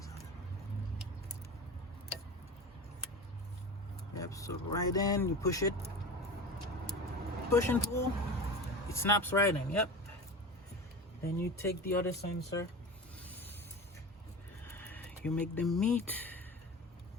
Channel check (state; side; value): normal; both; correlation 0.30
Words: so right in, you push it, push and pull, it snaps right in. Yep. Then you take the other sensor, you make them meet,